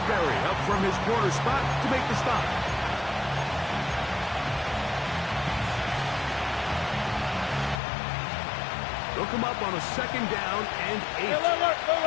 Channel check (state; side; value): drops out; right; at 7.8 s